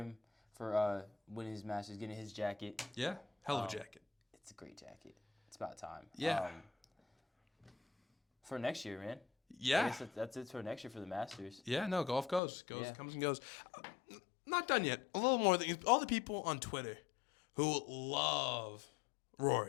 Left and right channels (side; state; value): right; drops out; at 12.4 s